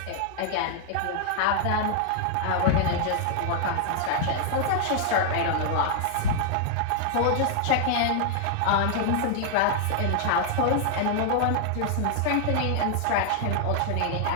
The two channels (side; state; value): both; different; correlation 0.00